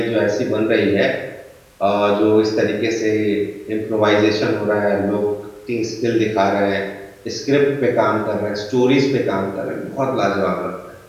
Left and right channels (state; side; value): identical; both; correlation 1.00